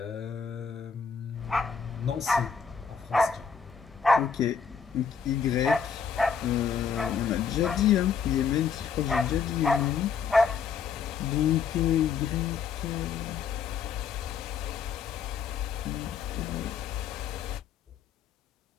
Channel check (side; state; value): right; quieter; 6.4 dB